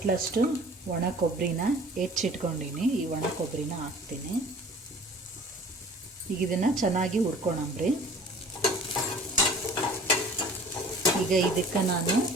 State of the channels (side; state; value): both; normal; correlation 0.47